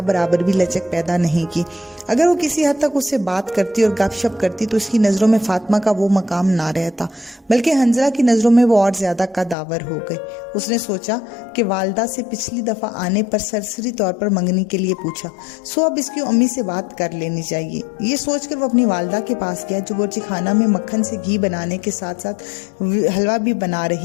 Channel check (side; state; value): right; drops out; at 9.6 s